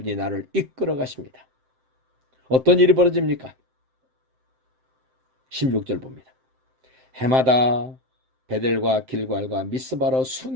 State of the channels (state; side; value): late; left; 7.7 ms